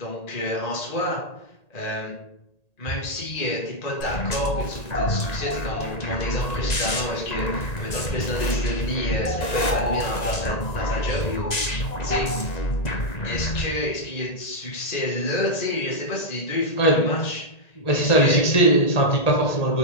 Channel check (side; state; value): right; late; 1.9 ms